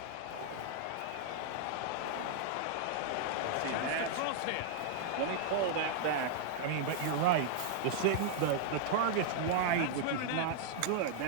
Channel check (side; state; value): both; different; correlation -0.01